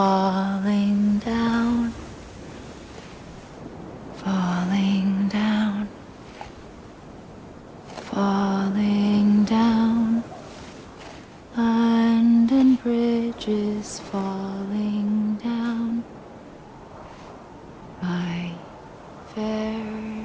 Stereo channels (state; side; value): identical; both; correlation 1.00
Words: down, falling down, falling down. London bridges falling down, my fair